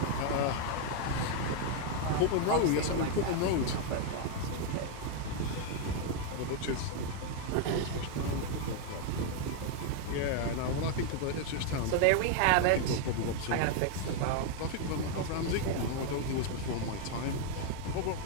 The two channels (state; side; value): different; both; correlation 0.01